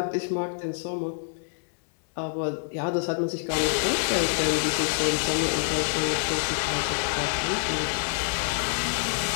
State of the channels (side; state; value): right; silent; digital silence